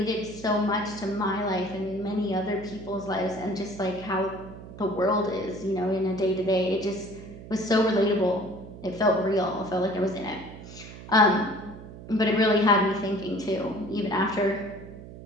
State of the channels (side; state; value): right; noise; hum, 15 dB below the sound